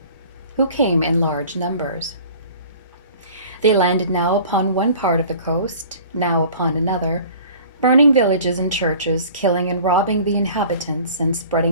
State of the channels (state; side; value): inverted; both; correlation -0.46